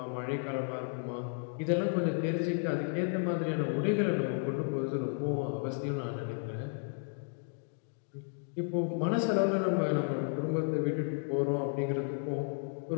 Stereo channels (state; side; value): silent; right; 56 dB below the other